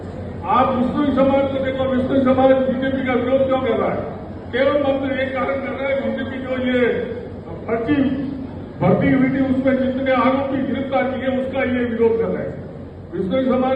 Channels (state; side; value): identical; both; correlation 1.00